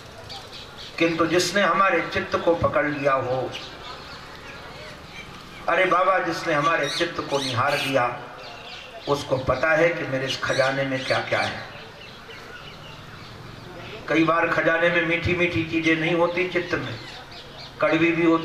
किंतु जिसने हमारे चित्त को पकड़ लिया हो, अरे बाबा, जिसने हमारे चित्त को निहार लिया, उसको पता है कि मेरे इस खजाने में क्या क्या है। कई बार खजाने में मीठी मीठी चीजें नहीं होती, चित्त में कड़वी भी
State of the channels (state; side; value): identical; both; correlation 1.00